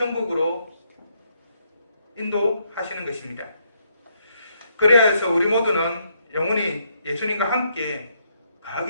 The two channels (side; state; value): both; inverted; correlation -0.74